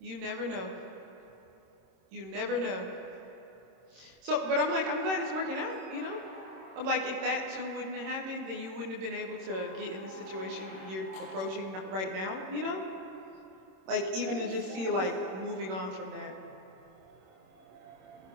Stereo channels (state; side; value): late; left; 26 ms